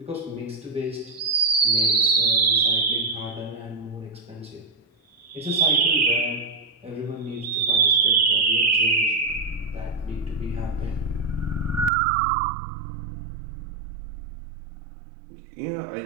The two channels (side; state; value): left; drops out; at 11.9 s